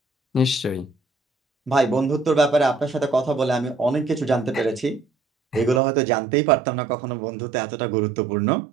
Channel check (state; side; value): drops out; left; at 5.8 s